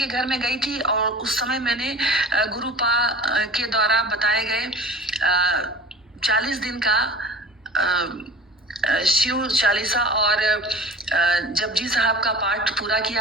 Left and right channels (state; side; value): normal; both; correlation 0.40